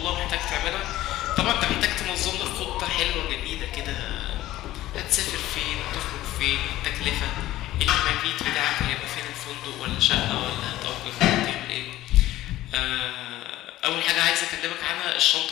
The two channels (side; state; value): right; quieter; 15.3 dB